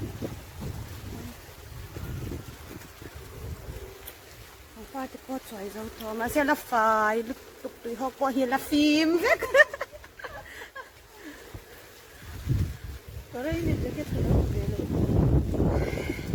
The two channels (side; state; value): both; identical; correlation 1.00